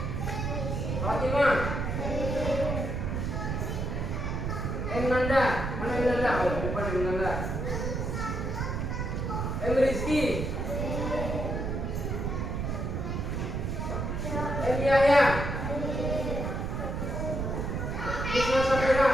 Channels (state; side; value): noise; right; rumble, 2 dB below the sound